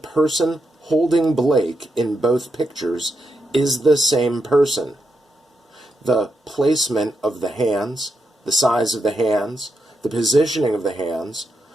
holding Blake in both pictures is the same person. The placement of the hands, the size of the hands, the positioning of the hands,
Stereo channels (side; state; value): both; normal; correlation 0.84